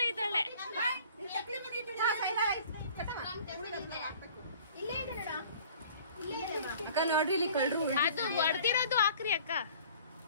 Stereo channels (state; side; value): inverted; both; correlation -0.50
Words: ಇದ್ದಾಳೆ. ಅಕ್ಕ ನೋಡ್ರಿ ಇಲ್ಲಿ ಕಳ್ರು. ಅದು ಹೊಡೆದಿರೋದು ಹಾಕ್ರಿ ಅಕ್ಕ.